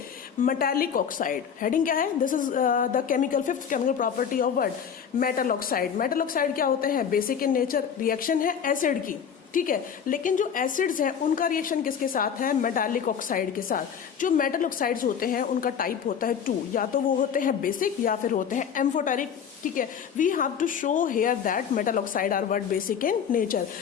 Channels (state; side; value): quieter; right; 7.7 dB